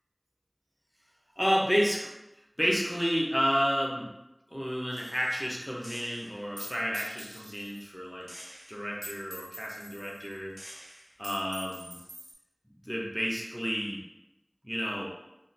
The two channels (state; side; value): identical; both; correlation 1.00